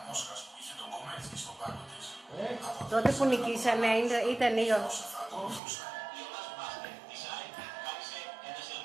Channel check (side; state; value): left; drops out; at 5.6 s